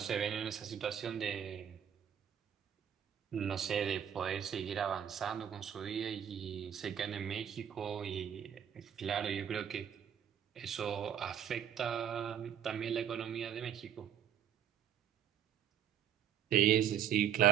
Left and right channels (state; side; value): quieter; left; 9.1 dB